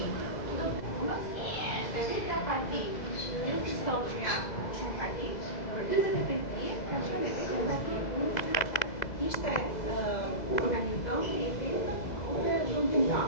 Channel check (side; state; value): right; late; 2.0 ms